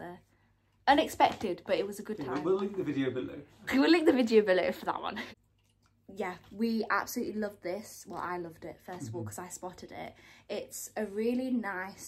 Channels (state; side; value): identical; both; correlation 1.00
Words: unexpected, but it was a good time. We'll link the video below. We will link the video below for that one. Yeah, we absolutely loved this. Well, I loved it first of all because I spotted it. It's a really